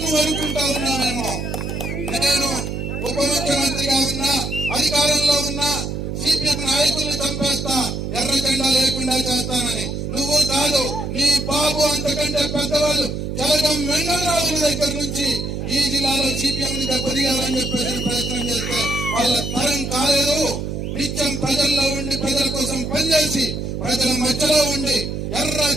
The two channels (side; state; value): right; noise; hum, 4 dB below the sound